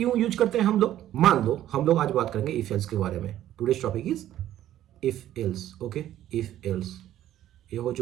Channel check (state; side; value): quieter; left; 12.5 dB